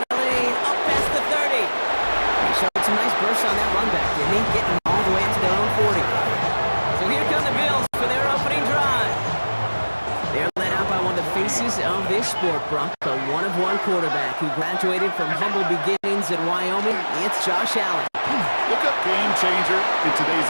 a lane up past the 30. He showed some nice bursts on that run back, didn't he? Getting all the way into their own 40. So here come the Bills for their opening drive. They're led out by one of the faces of this sport, Brock, a one-of-one quarterback who graduated from humble beginnings in Wyoming. It's Josh Allen. Look up game changer in today's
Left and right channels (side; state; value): both; inverted; correlation -1.00